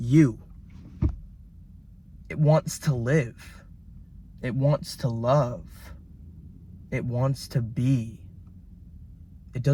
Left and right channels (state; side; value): identical; both; correlation 1.00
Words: It wants to live. It wants to love. It wants to be. It